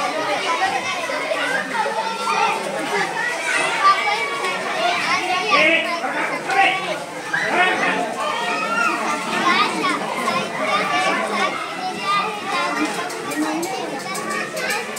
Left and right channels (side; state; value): both; identical; correlation 1.00